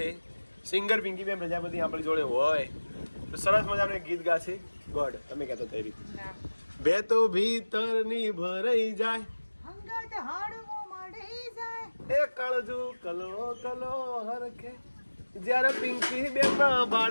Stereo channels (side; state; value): both; inverted; correlation -1.00